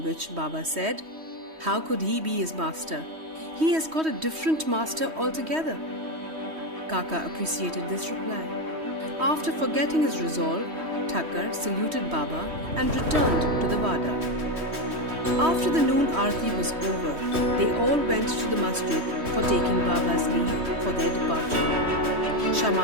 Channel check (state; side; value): late; left; 3.1 ms